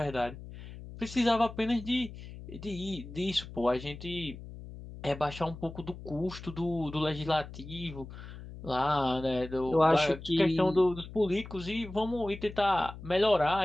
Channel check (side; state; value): left; noise; hum, 13 dB below the sound